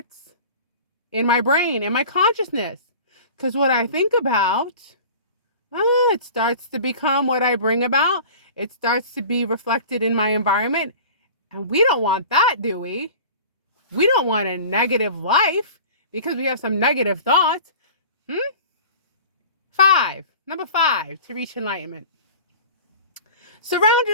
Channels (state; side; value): inverted; both; correlation -0.40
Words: in my brain, in my consciousness. Because what I think about, it starts to become what I bring about. It starts to be reflected in my environment. And we don't want that, do we? We don't want a negative life because we have some negative thoughts. Number 5, to reach enlightenment. Surround